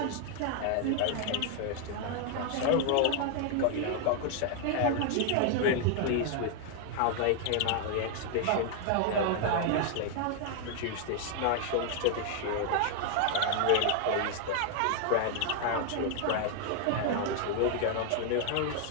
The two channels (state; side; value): different; both; correlation 0.00